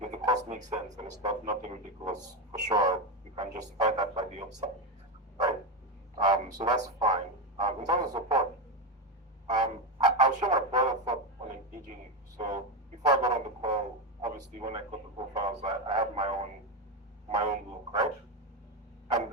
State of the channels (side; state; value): both; normal; correlation 0.12